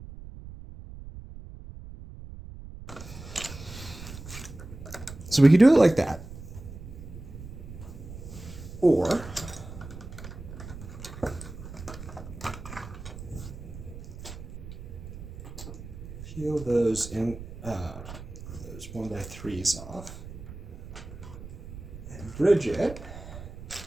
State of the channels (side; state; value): right; noise; rumble, 12 dB below the sound